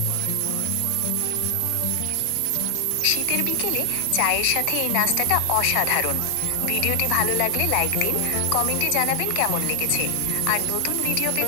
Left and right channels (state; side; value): different; both; correlation 0.00